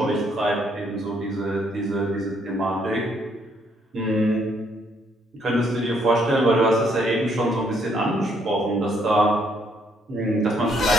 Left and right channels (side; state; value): both; normal; correlation 0.70